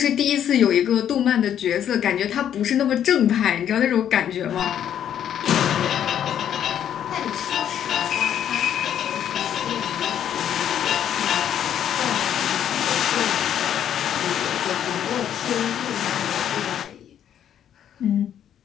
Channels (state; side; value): quieter; right; 9.8 dB